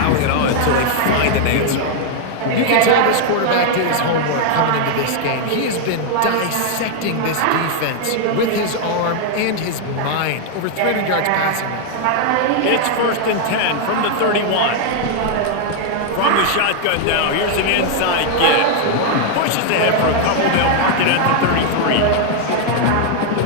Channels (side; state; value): both; different; correlation 0.00